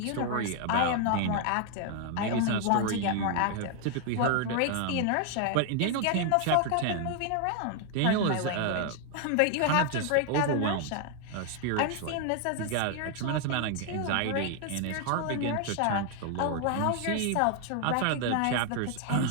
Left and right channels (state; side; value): different; both; correlation 0.00